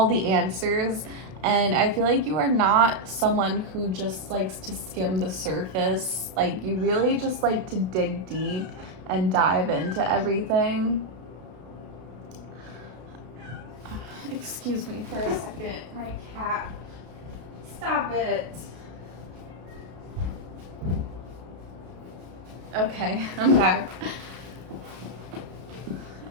the answers. And I feel like you are not someone who just likes to skim the surface. Like, you really just like to dig deep and dive into everything. Excuse me for a second. My cat. Stop it. Okay, I'm back.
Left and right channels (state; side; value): late; left; 32 ms